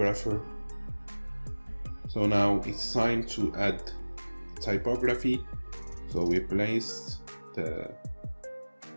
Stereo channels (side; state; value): both; inverted; correlation -1.00